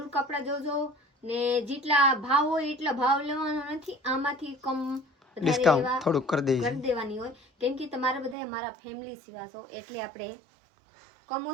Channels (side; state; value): left; drops out; at 8.3 s